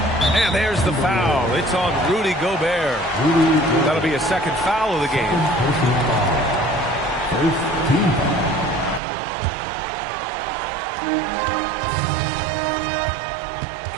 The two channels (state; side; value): drops out; left; at 9.0 s